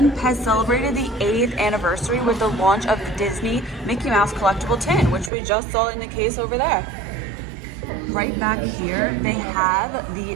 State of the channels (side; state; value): left; drops out; at 5.3 s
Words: PEZ celebrated the 80th anniversary with the launch of the Disney Mickey Mouse collectible tin, which we just saw in the case over there. Right back here, they have